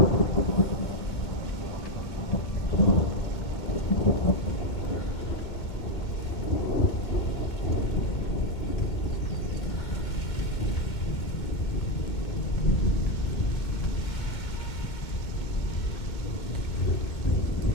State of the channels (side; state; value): right; late; 2.2 ms